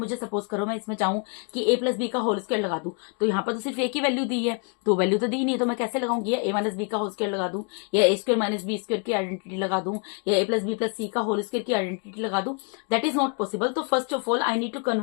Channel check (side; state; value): right; quieter; 37.2 dB